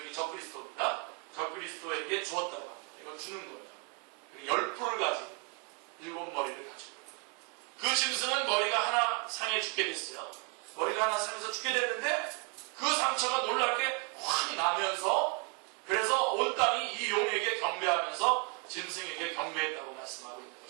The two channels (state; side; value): quieter; left; 35.8 dB